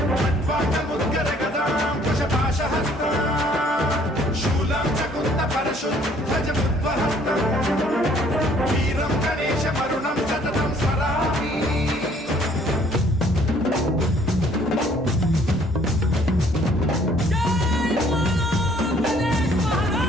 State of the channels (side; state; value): both; normal; correlation 0.60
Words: खड्वाङ्गमुद्गर गदां कुशपाशहस्तां शूलं च कुन्द परशुद्धजमुद्वहन्तम् वीरं गणेश वरुणं सततं स्मरामि।